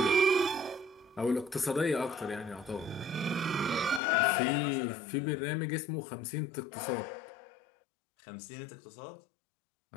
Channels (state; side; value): drops out; right; at 4.0 s